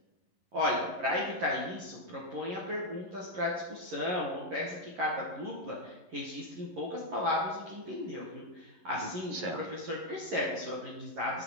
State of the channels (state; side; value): late; left; 11 ms